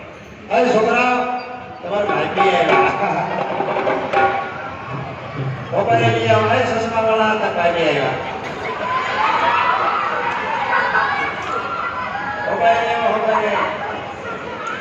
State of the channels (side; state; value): both; identical; correlation 1.00